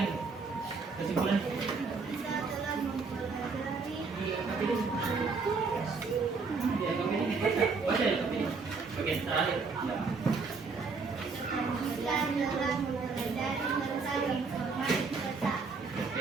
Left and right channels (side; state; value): left; quieter; 4.6 dB